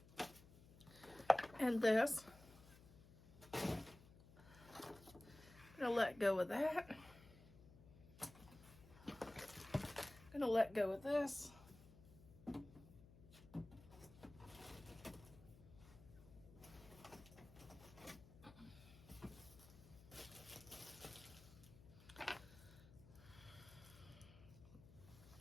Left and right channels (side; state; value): left; noise; hum, 20 dB below the sound